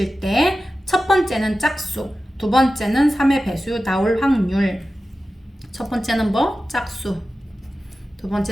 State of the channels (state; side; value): normal; both; correlation 0.94